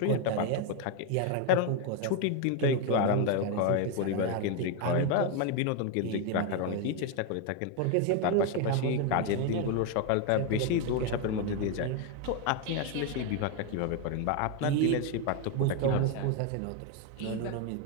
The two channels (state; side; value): different; both; correlation 0.01